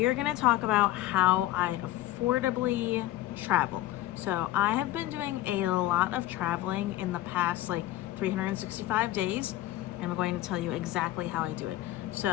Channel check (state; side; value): quieter; right; 15.5 dB